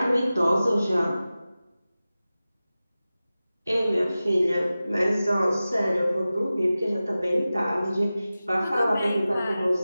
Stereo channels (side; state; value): both; inverted; correlation -0.96